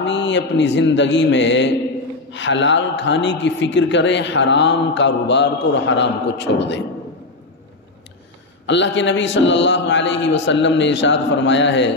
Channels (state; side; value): quieter; right; 3.1 dB